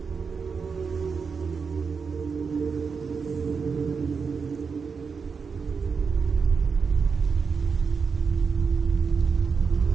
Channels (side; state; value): left; quieter; 5.5 dB